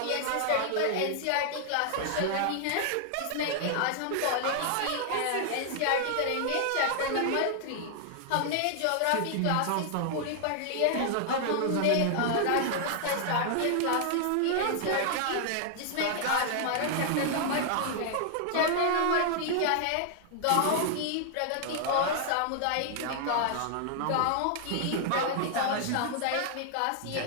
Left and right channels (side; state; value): both; different; correlation 0.00